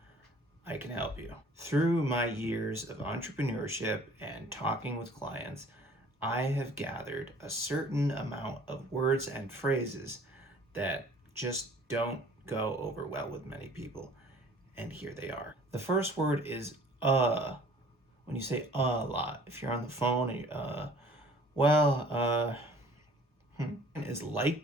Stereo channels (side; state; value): both; normal; correlation 0.52